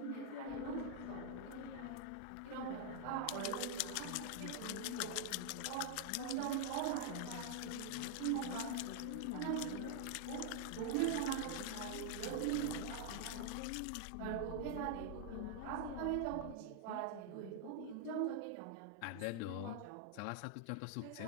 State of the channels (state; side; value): different; both; correlation 0.00